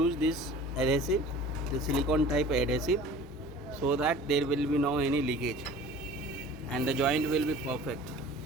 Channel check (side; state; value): both; normal; correlation 0.43